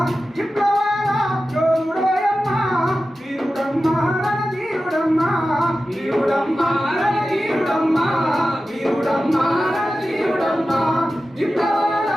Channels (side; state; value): both; normal; correlation 0.93